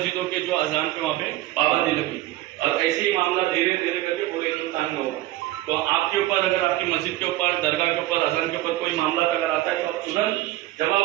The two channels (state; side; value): quieter; left; 16.5 dB